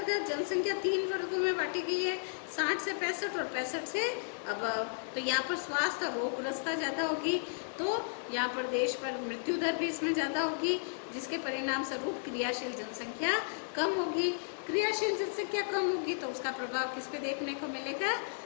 जनसंख्या 3 वर्गों में बांटी गई है, 60 से 65 और 65 से अब। तो यहाँ पर स्वास्थ्य और रोगग्रस्तता ज़्यादा होगी, तो यहाँ पर देश पर मृत्यु दर भी इसमें ज़्यादा होगी, जिसके परिणाम स्वरूप क्रियाशील जनसंख्या कम होगी। क्रियाशील जनसंख्या कम होगी तो उसका प्रभाव किस पे देखने को मिलेगा,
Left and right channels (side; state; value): right; silent; digital silence